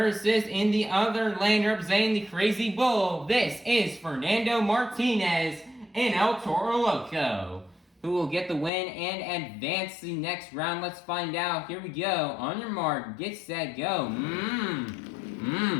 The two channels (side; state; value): right; drops out; at 8.7 s